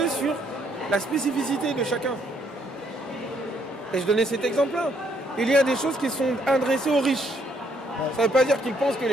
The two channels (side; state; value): both; normal; correlation 0.70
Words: sur la spécificité de chacun. Et je donnais cet exemple-là. Il y a des choses qui sont adressées aux riches. Ça ne veut pas dire qu'ils pensent que